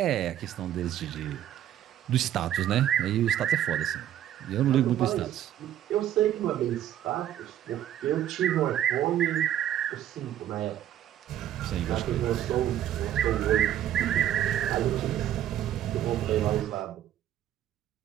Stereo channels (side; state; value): left; quieter; 11.5 dB